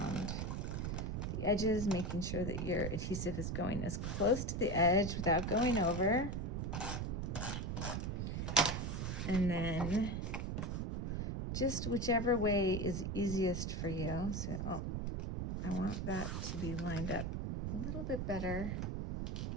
the edges, making sure that your adhesive is going as close to the edge without going over. And then just whichever way is easiest for you. So, I want that to be lined up a little bit better.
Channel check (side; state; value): right; noise; rumble, 2 dB below the sound